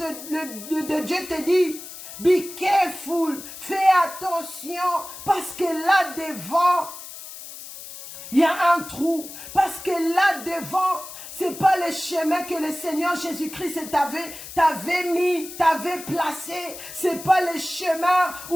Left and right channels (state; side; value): noise; left; hiss, 13 dB below the sound